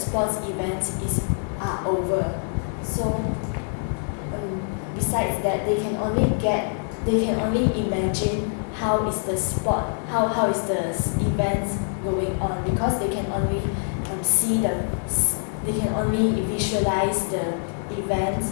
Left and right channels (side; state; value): right; silent; 62 dB below the other